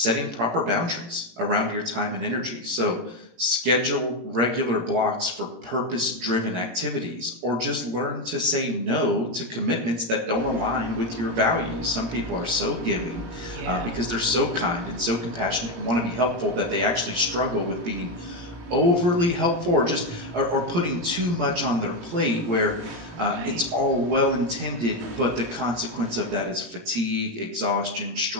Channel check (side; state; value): left; late; 18 ms